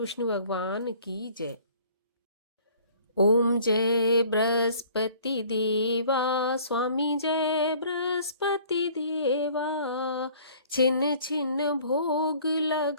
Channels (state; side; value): inverted; both; correlation -0.53